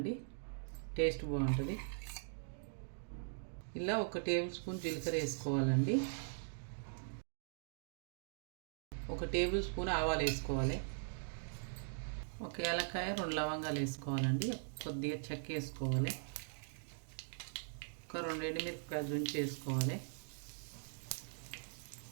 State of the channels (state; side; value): silent; left; digital silence